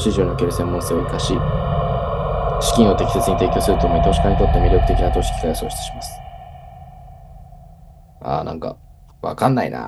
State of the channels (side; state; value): both; identical; correlation 1.00